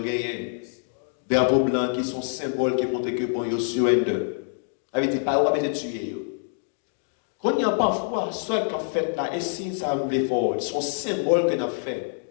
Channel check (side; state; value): right; silent; digital silence